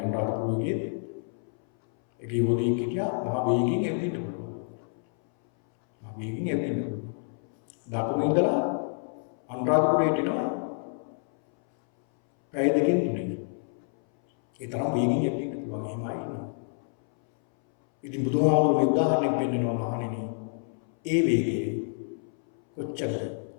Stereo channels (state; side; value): silent; right; 59 dB below the other